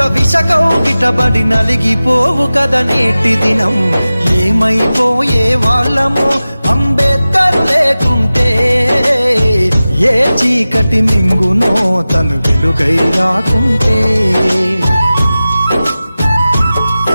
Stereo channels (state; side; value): inverted; both; correlation -0.96